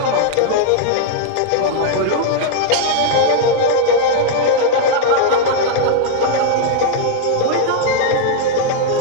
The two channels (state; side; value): different; both; correlation -0.01